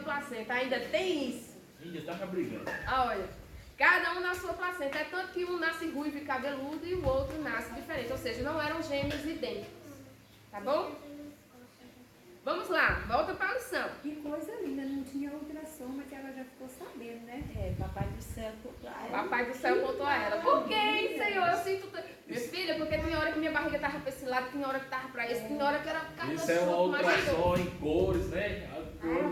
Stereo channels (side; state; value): both; identical; correlation 1.00